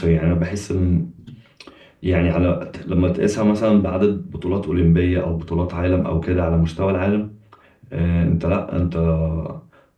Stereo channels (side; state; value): both; identical; correlation 1.00